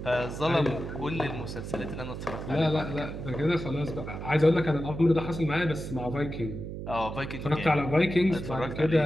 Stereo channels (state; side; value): noise; right; hum, 7 dB below the sound